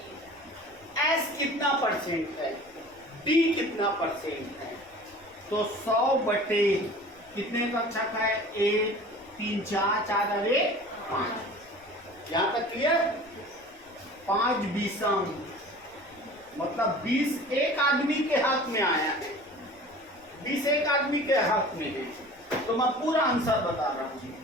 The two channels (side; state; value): left; noise; rumble, 29 dB below the sound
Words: s कितना परसेंट है, d कितना परसेंट है। तो 100 बटे कितने कक्षक है, 1 3 4 4 अरे 5। यहां तक क्लियर? 5 बीसम मतलब 20 एक आदमी के हाथ में आया है, 20 एक आदमी के हाथ में है। तो मैं पूरा आंसर बता रहा हूं,